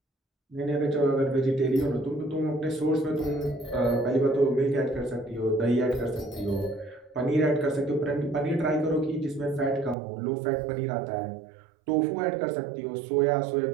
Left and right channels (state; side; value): drops out; left; at 10.0 s